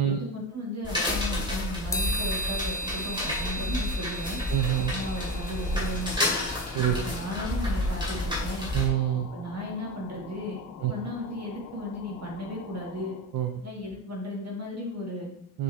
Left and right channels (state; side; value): normal; both; correlation 0.22